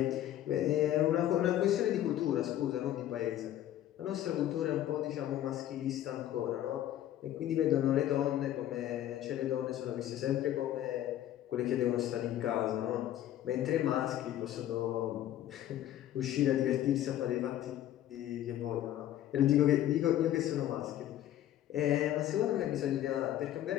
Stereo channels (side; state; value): right; quieter; 12.4 dB